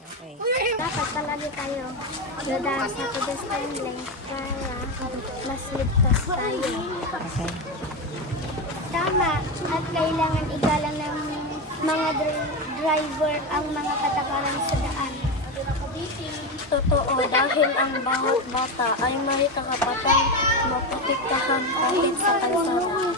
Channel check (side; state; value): both; normal; correlation 0.15